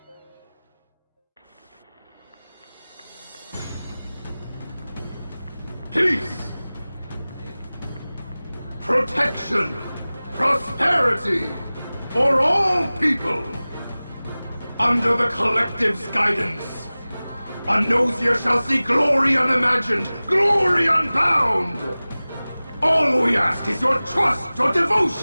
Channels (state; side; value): inverted; both; correlation -0.98